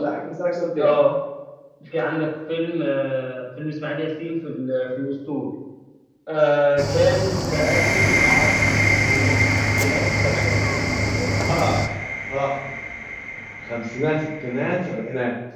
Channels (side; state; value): both; identical; correlation 1.00